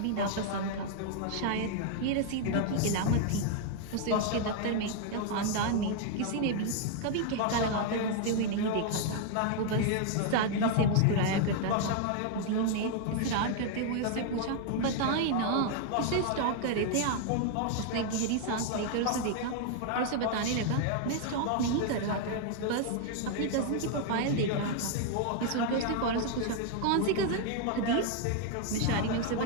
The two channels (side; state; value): both; different; correlation 0.00